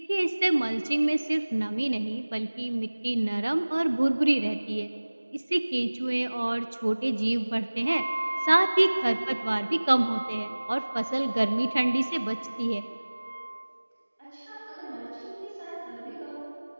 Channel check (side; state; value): both; inverted; correlation -1.00